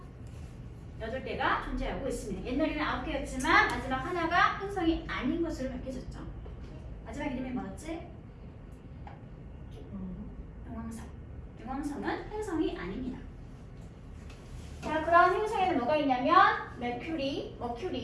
8개가 존재하고 있습니다. 옛날에는 9개였지만 마지막 하나가 행성이 아닌 것으로 밝혀졌죠. 마지막 이름이 뭐였지? 용왕성. 용왕성은 행성이 아닙니다. 자, 그런 행성에는 뭐가 있냐면 Mercury,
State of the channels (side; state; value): both; identical; correlation 1.00